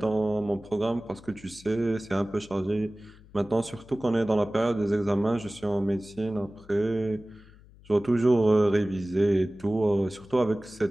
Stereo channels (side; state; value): left; noise; hum, 24 dB below the sound